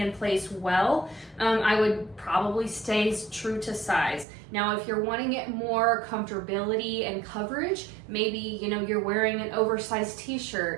place well, I would probably stay true to size. Now, if you're wanting it more comfortability and coverage, maybe, you know, you're wearing an oversized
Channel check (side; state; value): left; drops out; at 4.2 s